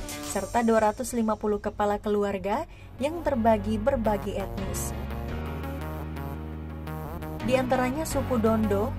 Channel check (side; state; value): both; identical; correlation 1.00